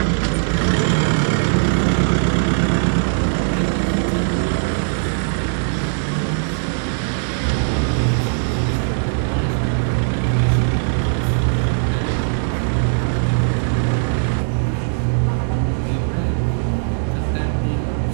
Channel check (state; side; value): silent; left; digital silence